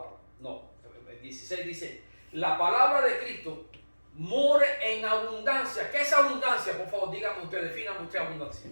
No, el 16 dice, la palabra de Cristo more en abundancia. ¿Qué es abundancia? Por favor, dígame usted, defíname usted abundancia.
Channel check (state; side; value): inverted; both; correlation -1.00